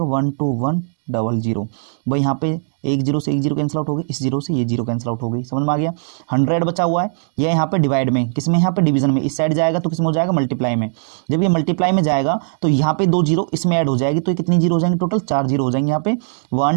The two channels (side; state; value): left; silent; 67 dB below the other